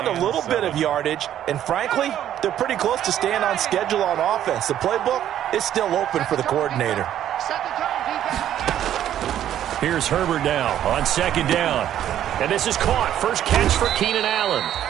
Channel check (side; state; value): left; quieter; 11.2 dB